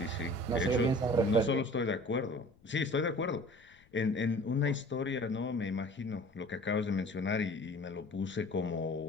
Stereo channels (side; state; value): left; noise; rumble, 30 dB below the sound